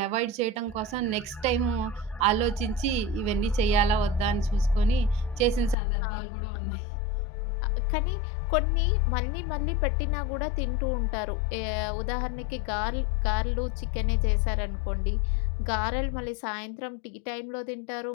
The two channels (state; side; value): drops out; right; at 5.8 s